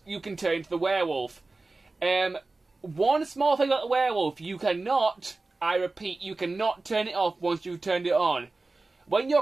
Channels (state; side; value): quieter; left; 3.4 dB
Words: you can turn into the werewolf. One small thing about the werewolf, you cannot, I repeat, you cannot turn it off once you've turned it on. When your